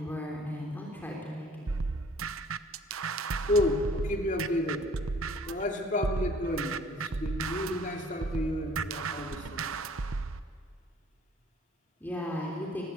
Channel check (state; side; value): normal; both; correlation 0.54